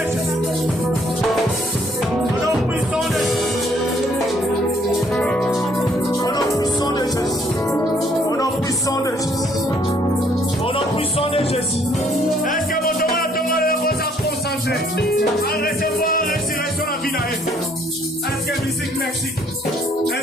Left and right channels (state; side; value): normal; both; correlation 0.65